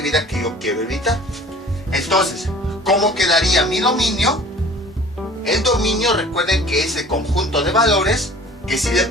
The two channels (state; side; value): normal; both; correlation 0.47